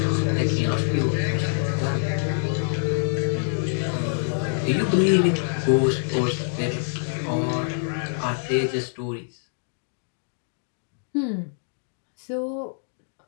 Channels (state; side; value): silent; right; digital silence